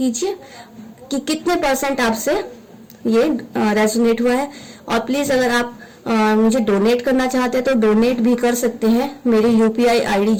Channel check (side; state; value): both; identical; correlation 1.00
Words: कि कितने % आपसे ये रेजोनेट हुआ है। और प्लीज अगर आप मुझे डोनेट करना चाहते हैं तो डोनेट भी कर सकते हैं, मेरी UPI ID